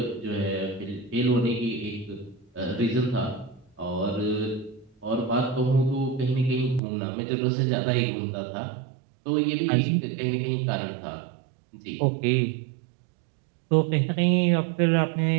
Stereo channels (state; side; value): drops out; left; at 6.8 s